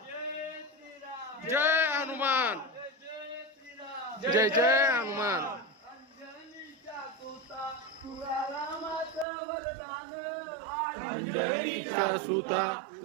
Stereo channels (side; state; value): left; drops out; at 9.2 s